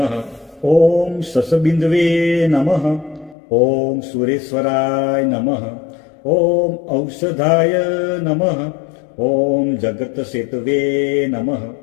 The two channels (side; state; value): right; drops out; at 3.4 s